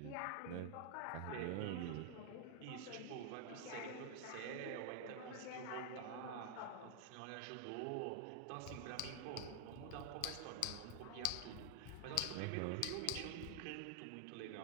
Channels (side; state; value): both; different; correlation 0.00